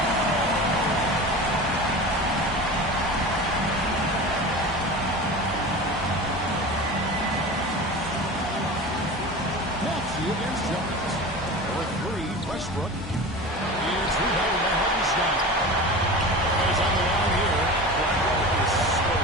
Against Jones. For three, Westbrook. It's rebounded by Hartenstein. He's on the line here. Brown is so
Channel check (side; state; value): both; normal; correlation 0.32